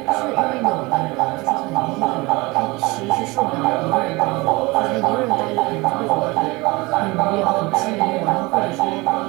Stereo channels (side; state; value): left; quieter; 23.5 dB